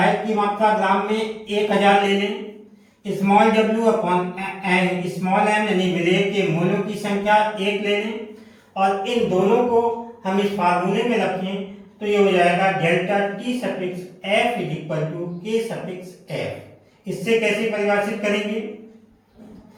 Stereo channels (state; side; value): identical; both; correlation 1.00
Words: की मात्रा ग्राम में 1000 ले लें, small W upon small M यानी विलेय के मोलों की संख्या 1 ले लें और इन दोनों को हम इस फार्मूले में रखें तो ये हो जाएगा delta T suffix F is equal to K suffix F. इससे कैसे परिभाषित करेंगे,